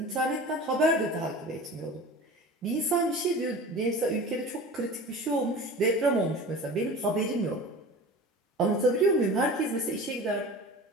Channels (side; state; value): both; normal; correlation 0.36